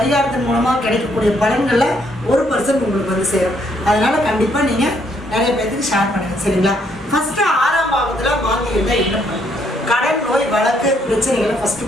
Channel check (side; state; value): both; normal; correlation 0.71